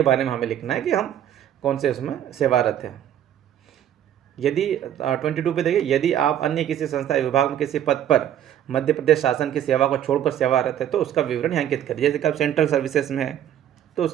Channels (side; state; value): left; quieter; 10.6 dB